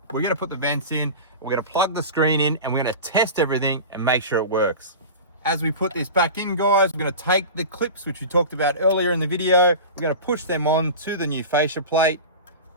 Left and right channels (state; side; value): inverted; both; correlation -0.30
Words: we're going to put the vents in, we're going to plug the screen in, and we're going to test everything and make sure it works. As we put this back in, guys, we're going to take the clips which we talked about earlier in the video, we're going to push them on to the new fascia plate,